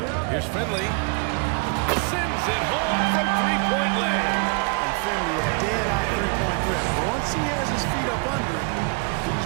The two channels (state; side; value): quieter; left; 32.8 dB